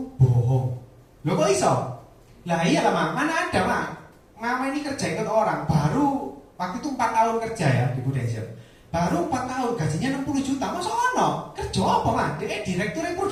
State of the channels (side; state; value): both; identical; correlation 1.00